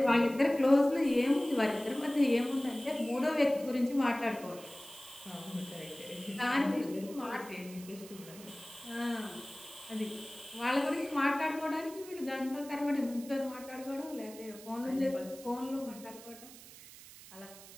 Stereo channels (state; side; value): noise; right; hiss, 17 dB below the sound